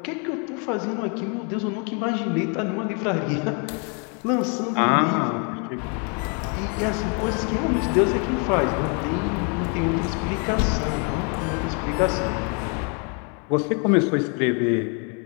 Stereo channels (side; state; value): right; quieter; 36.8 dB